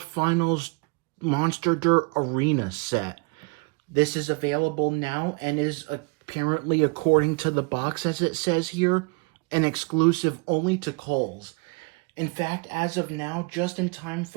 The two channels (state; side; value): quieter; left; 31.3 dB